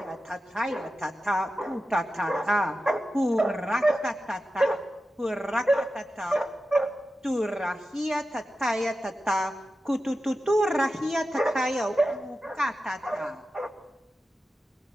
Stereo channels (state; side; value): normal; both; correlation 0.92